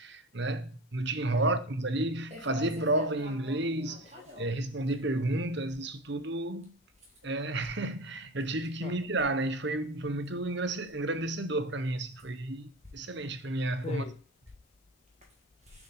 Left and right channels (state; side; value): normal; both; correlation 0.31